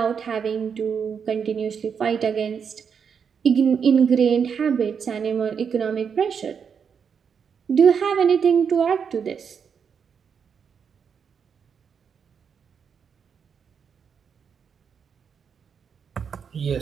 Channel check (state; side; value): quieter; left; 6.8 dB